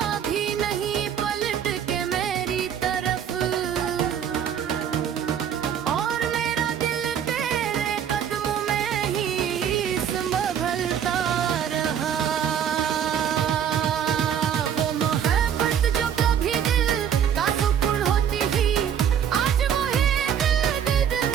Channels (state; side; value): quieter; left; 8.7 dB